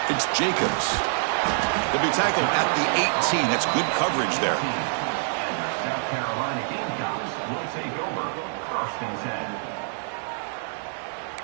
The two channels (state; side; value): silent; left; digital silence